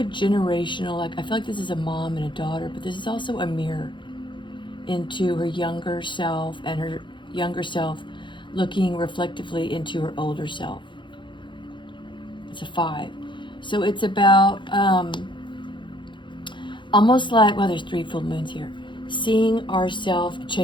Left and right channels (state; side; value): late; right; 0.23 ms